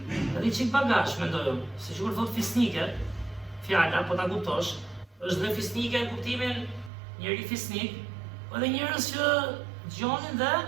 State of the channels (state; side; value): drops out; left; at 6.9 s